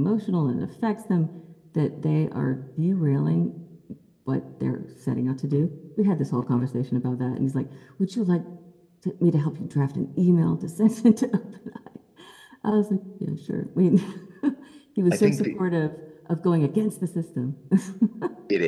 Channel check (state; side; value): identical; both; correlation 1.00